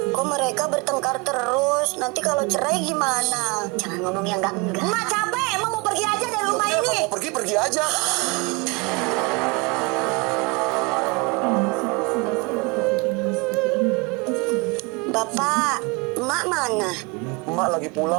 Kok mereka bertengkar terus? Nanti kalau cerai gimana? Jangan ngomong yang enggak. Emak capek, Emak mau pergi aja dari rumah ini. Pergi aja. Bapak, Emak mana? Emak lagi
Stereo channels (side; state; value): left; quieter; 27.5 dB